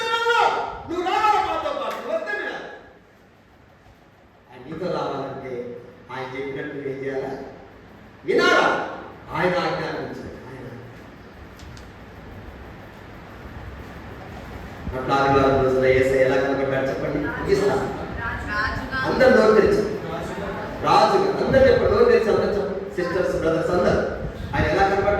అట్లా ఆదివారం రోజున యేసయ్య ఎలా కనబడ్డాడు చెప్పండి. ముగిస్తాను. అందరు నోరు తెరిచి రాజుగా, అందరు చెప్పండి, నోరు తెరిచి అందరు చెప్పండి, సిస్టర్స్ బ్రదర్స్ అందరు. ఆయన ఎలా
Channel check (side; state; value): both; identical; correlation 1.00